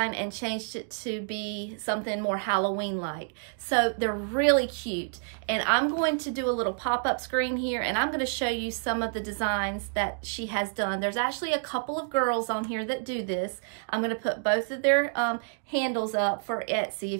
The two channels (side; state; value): left; silent; digital silence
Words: and changed it to be something more Halloween-like. So they're really cute. And I'm going to do a little pop-up screen here, and I'm going to show you some of the designs that she has done. There's actually a couple of girls on here that do this. I'm going to put both of their handles up for Etsy